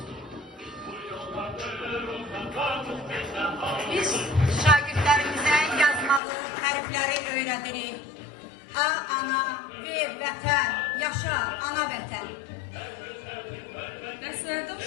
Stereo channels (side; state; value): right; drops out; at 6.2 s